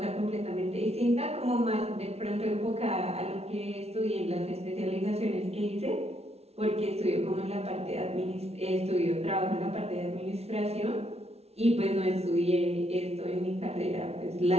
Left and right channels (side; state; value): left; late; 0.30 ms